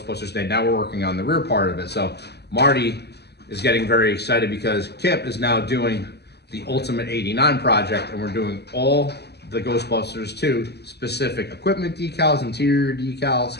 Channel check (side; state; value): right; late; 0.48 ms